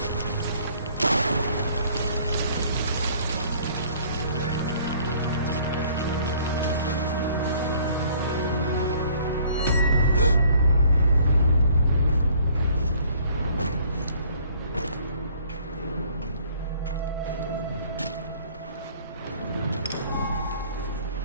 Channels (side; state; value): both; inverted; correlation -0.57